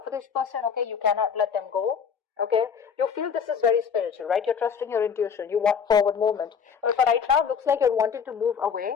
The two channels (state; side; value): quieter; right; 6.7 dB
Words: for this person, okay? You cannot let them go. Okay, you feel this is very spiritual, right? You're trusting your intuition. You want forward movement. But for right now, it looks like you're wanting to move